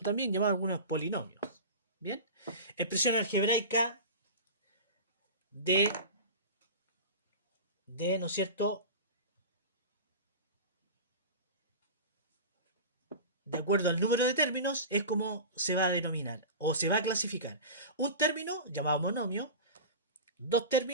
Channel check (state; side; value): inverted; both; correlation -0.30